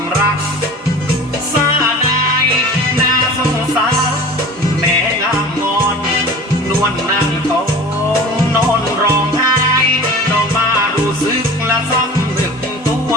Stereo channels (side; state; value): both; normal; correlation 0.39